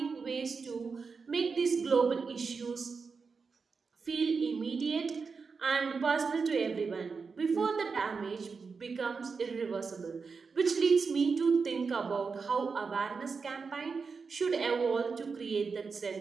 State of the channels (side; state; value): left; quieter; 5.0 dB